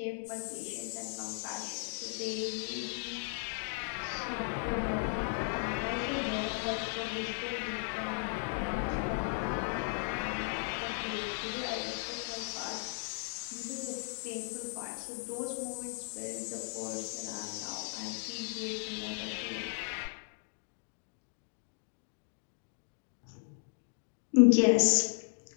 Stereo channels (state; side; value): silent; right; 54 dB below the other